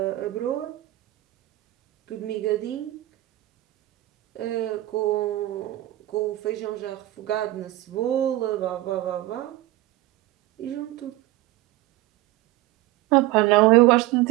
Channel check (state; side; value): quieter; left; 17.0 dB